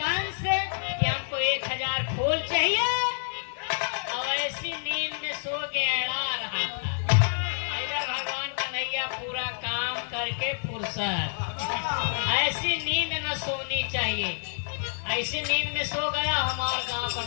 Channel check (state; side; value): silent; right; 59 dB below the other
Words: कंस कि हमको 1000 फूल चाहिए, और ऐसी नींद में सो के अड़ा रहा था। इधर भगवान कन्हैया पूरा काम करके फुर्सत, ऐसी नींद न सोनी चाहिए, ऐसी नींद में सो गया। हमारे गांव का